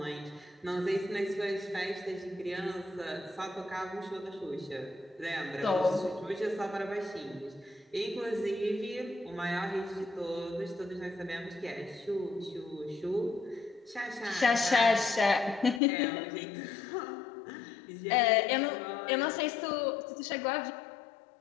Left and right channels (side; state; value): right; drops out; at 15.8 s